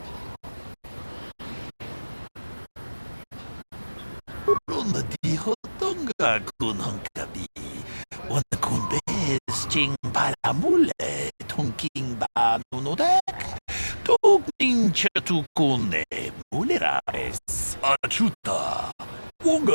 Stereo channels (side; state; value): both; inverted; correlation -1.00